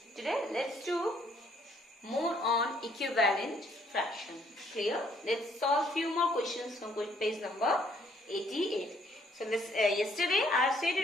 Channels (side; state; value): both; normal; correlation 0.66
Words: Today let's do more on equivalent fraction. Clear? Let's solve few more questions from page number 88. So yesterday I have stated